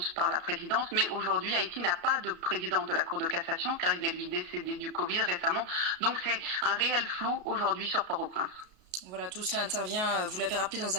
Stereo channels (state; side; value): late; left; 33 ms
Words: par la présidence, mais aujourd'hui, Haïti n'a pas de président de la Cour de cassation, car il est lui décédé du Covid récemment. Donc c'est un réel flou aujourd'hui sur Port-au-Prince. Voilà, tout cela intervient, vous l'avez rappelé, dans